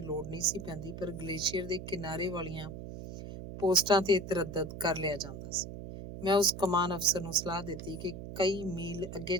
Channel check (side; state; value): right; noise; hum, 10 dB below the sound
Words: ਲੋੜ ਨਹੀਂ ਸੀ ਪੈਂਦੀ, ਪਰ ਗਲੇਸ਼ੀਅਰ ਦੇ ਕਿਨਾਰੇ ਵਾਲੀਆਂ ਪੋਸਟਾਂ ਤੇ ਤਰੱਦਦ ਕਰ ਲਿਆ ਜਾਂਦਾ ਸੀ। ਮੈਂ ਉਸ ਕਮਾਨ ਅਫਸਰ ਨੂੰ ਸਲਾਹ ਦਿੱਤੀ ਕਿ ਕਈ ਮੀਲ ਅੱਗੇ